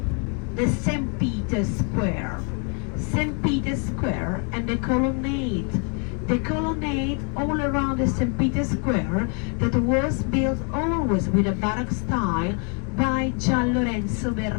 The St. Peter's Square. St. Peter's Square and the colonnade. The colonnade all around the St. Peter's Square that was built always with a Baroque style by Gian Lorenzo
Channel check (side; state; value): right; quieter; 37.3 dB